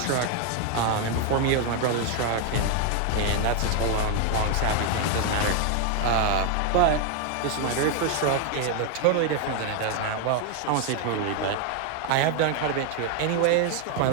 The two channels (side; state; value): both; different; correlation 0.01